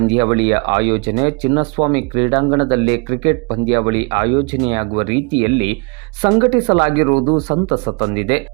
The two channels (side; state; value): left; quieter; 32.9 dB